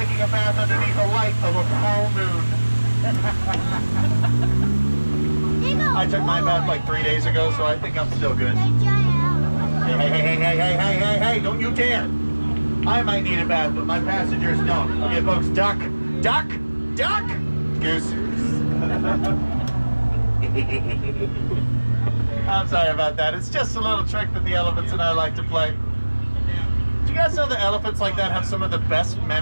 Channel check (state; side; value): inverted; both; correlation -1.00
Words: a bath underneath the light of a full moon. I took my bath like 3 days ago, so I think I'm still good. Hey, don't you dare. I might need a bath, but my passengers don't. Okay, folks, duck, goose. I'm sorry about that. It's just a little trick that the elephants and I like to play. Do you guys know that elephants like that have some of the best